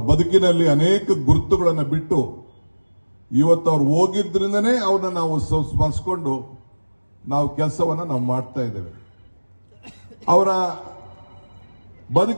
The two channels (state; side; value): inverted; both; correlation -1.00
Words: ಬದುಕಿನಲ್ಲಿ ಅನೇಕ ಗುರುತುಗಳನ್ನು ಬಿಟ್ಟು ಇವತ್ತು ಅವ್ರು ಹೋಗಿದ್ರಿಂದನೇ ಅವ್ರನ್ನ ನಾವು ಸ್ಮರಿಸಿಕೊಂಡು ನಾವು ಕೆಲಸವನ್ನು ನಾವು ಮಾಡ್ತಾ ಇದ್ದೇವೆ. ಅವರ